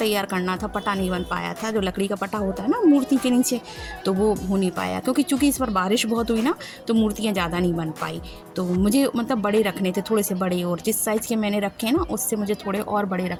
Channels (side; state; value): both; identical; correlation 1.00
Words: करना था, पटा नहीं बन पाया था, जो लकड़ी का पटा होता है ना मूर्ति के नीचे, तो वो हो नहीं पाया, क्योंकि चूँकि इस बार बारिश बहुत हुई ना, तो मूर्तियाँ ज़्यादा नहीं बन पाई। तो मुझे मतलब बड़े रखने थे, थोड़े से बड़े, और जिस साइज़ के मैंने रखे ना उससे मुझे थोड़े और बड़े